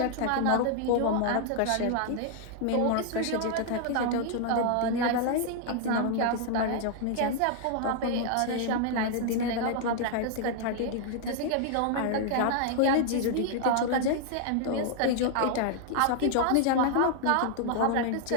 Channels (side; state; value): both; different; correlation 0.00